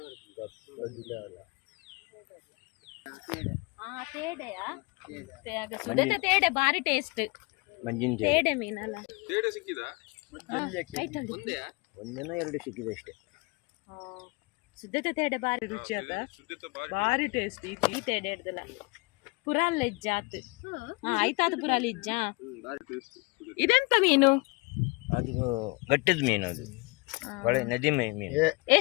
ತೇಡೆಯಾ ಸುಡತೆ ತೇಡೆ ಬಾರಿ ಟೇಸ್ಟ್ ಮಂಜಿನ ತೇಡೆ ಮೀನಲ್ಲ ತೇಡೆ ಸಿಕ್ಕಿದ ಒಂದೇನೋ 2 ಸಿಕ್ಕಿದೆ ಅಷ್ಟೇ. ಸುದ್ದತೆ ತೇಡೆ ಬಾರಿ ರುಚಿ ಅದ ಬಾರಿ ಟೇಸ್ಟ್ ಈ ತೇಡೆ ಹಿಡ್ದಲ್ಲ ಪುರಾಲ್ ಇಜ್ಜಾತ್ ಆಯ್ತಾದ ಪುರಾಲ್ ಇಜ್ಜ ಇದೆಂತ ಮೀನು? ಅದು ಗಟ್ಟಿದ ಮೀನು, ಅದು ಒಳ್ಳೆ ನದಿ ಮೀನು.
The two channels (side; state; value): right; quieter; 26.6 dB